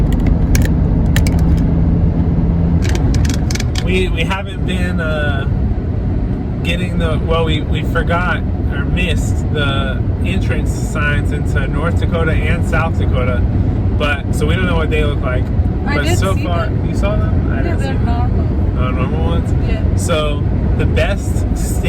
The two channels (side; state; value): both; identical; correlation 1.00